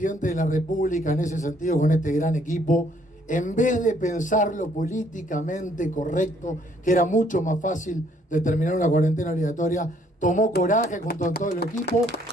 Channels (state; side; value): normal; both; correlation 0.65